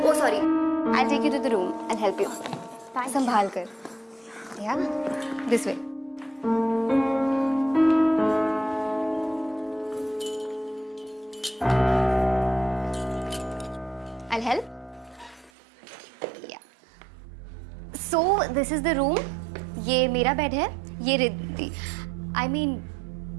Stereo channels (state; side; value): drops out; left; at 15.5 s